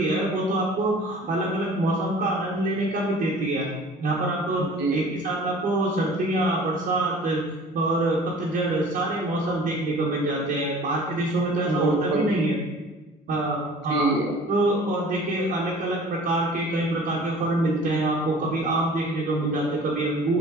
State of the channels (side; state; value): both; normal; correlation 0.46